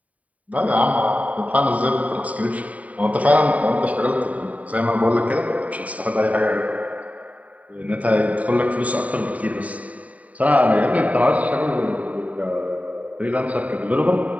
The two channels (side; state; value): left; late; 0.069 ms